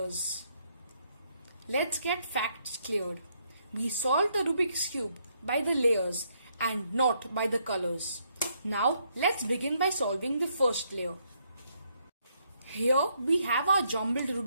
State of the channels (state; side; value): inverted; both; correlation -0.73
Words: Let's get facts cleared. We solve the Rubik's Cube by the layers and not by the colors. Now let's begin by solving the first layer. Here we have our jumbled